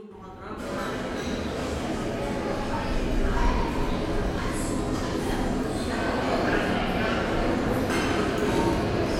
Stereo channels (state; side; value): identical; both; correlation 1.00